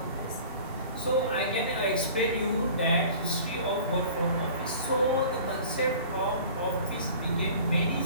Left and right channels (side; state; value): both; inverted; correlation -0.44